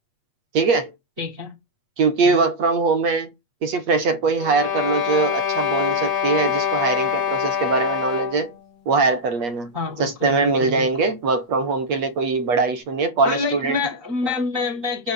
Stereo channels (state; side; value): late; left; 8.4 ms